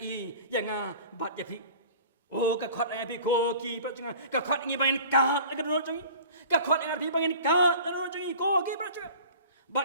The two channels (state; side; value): inverted; both; correlation -0.44